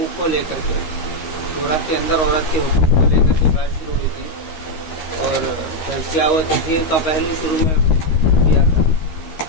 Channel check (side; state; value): right; late; 13 ms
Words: کو لے کر کے، سورہ کے اندر عورت کے حقوق کو لے کر کے بات شروع ہوئی تھی، اور تزکیہ و تطہیر کا پہلو شروع میں کیا تھا،